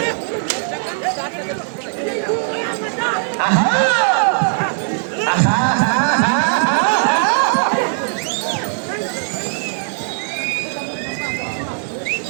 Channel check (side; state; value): left; silent; 67 dB below the other